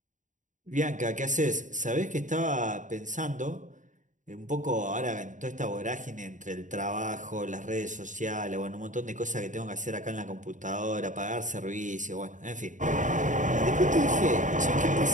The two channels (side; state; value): left; late; 0.37 ms